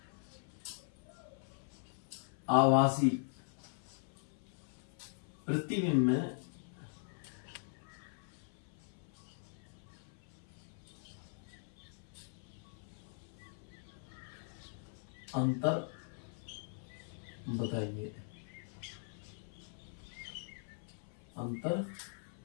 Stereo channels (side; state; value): right; silent; 50 dB below the other